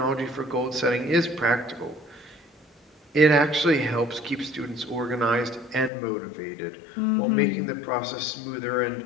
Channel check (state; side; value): drops out; right; at 5.9 s